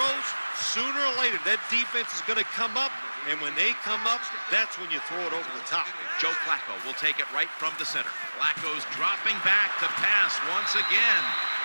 sooner or later that defense is going to come up, and when they come up, that's when you throw it over the top. Joe Flacco will take it right from the center. Flacco's dropping back to pass once again.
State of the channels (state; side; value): inverted; both; correlation -1.00